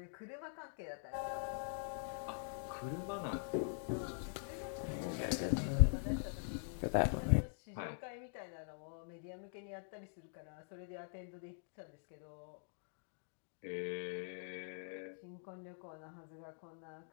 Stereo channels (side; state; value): right; silent; digital silence